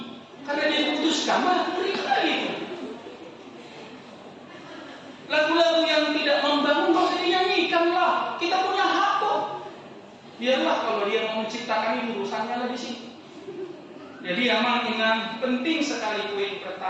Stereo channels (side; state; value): both; identical; correlation 1.00